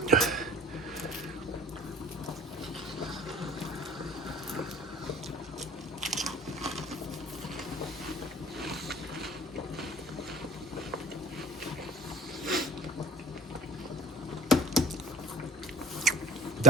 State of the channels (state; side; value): normal; both; correlation 0.47